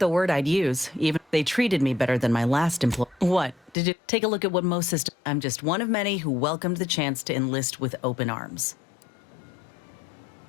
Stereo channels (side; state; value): right; drops out; at 3.8 s